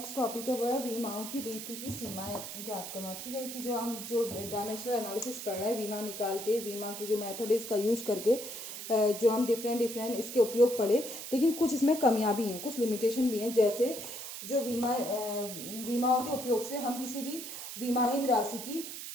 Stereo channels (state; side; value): noise; right; hiss, 8 dB below the sound